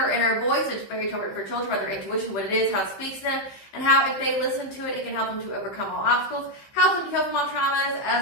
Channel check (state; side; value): late; right; 15 ms